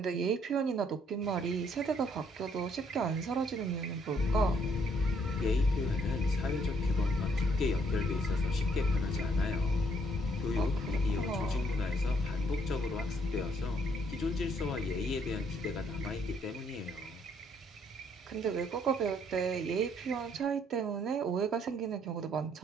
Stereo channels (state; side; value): normal; both; correlation 0.68